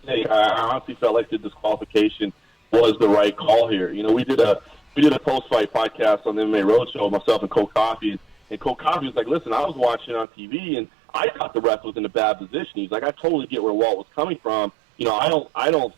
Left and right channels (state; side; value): drops out; left; at 10.2 s